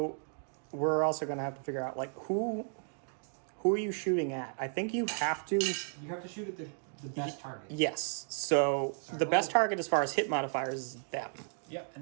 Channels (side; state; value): left; silent; 55 dB below the other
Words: we're also going to have to figure out, like, who are you shooting at? I think you have to... You have to shoot at the best target. Yes. So Sorry, the best what? target as far as hit modifiers is them. Yep,